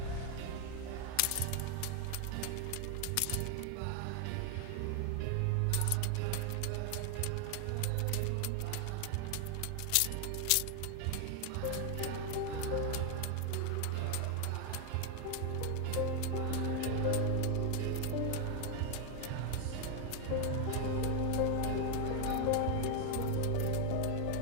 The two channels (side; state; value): both; different; correlation 0.01